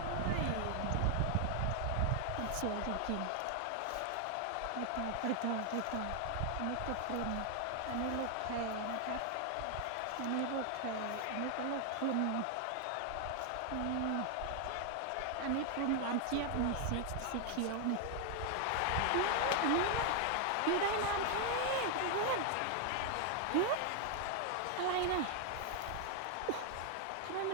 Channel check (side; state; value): both; different; correlation 0.00